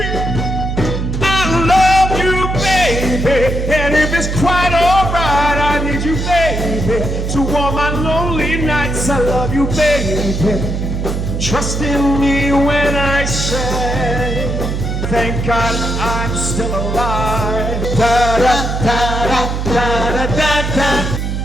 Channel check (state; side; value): noise; right; hum, 2 dB below the sound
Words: I love you, baby. And if it's quite alright, I need you, baby, to warm my lonely nights. I love you, baby. Trust in me when I say, thank God I'm still alive. Da da da da da da da da.